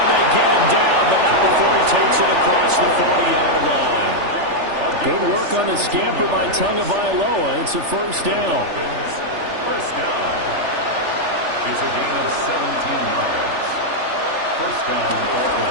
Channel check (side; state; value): left; late; 3.4 ms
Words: they get him down, but not before he takes it across the 40-yard line. Good work on the scamper by Tagovailoa. It's a 1st down. First down. It's a gain of 17 yards. First down,